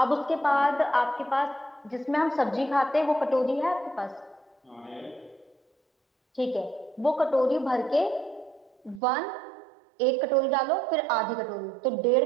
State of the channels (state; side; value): drops out; left; at 9.0 s